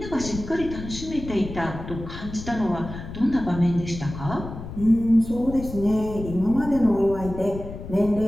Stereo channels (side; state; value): left; noise; rumble, 10 dB below the sound